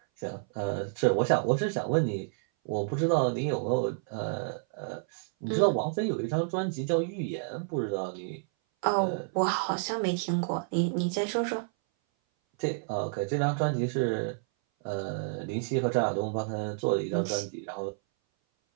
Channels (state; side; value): silent; left; 57 dB below the other